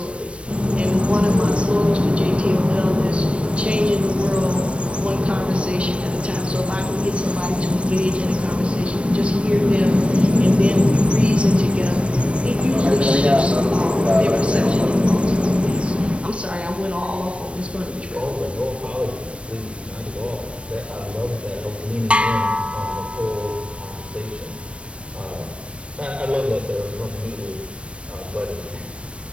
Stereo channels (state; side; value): late; left; 0.060 ms